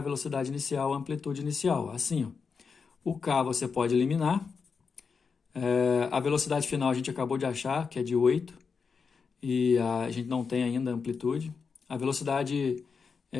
velocidade inicial, amplitude inicial. Assim, ó. O K você pode eliminar. A velocidade final a gente acabou de achar, que é de 8, e a gente não tem ainda a amplitude. A velocidade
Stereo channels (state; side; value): quieter; right; 5.4 dB